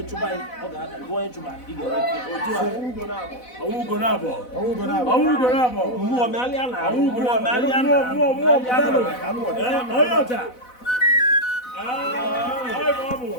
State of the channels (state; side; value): late; right; 4.0 ms